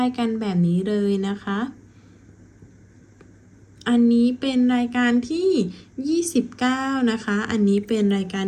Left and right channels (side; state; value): both; identical; correlation 1.00